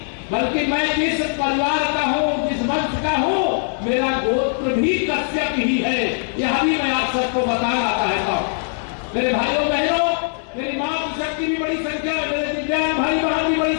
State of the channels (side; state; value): right; silent; digital silence